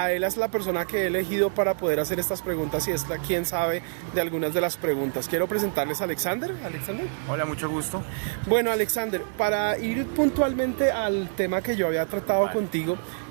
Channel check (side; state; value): left; silent; digital silence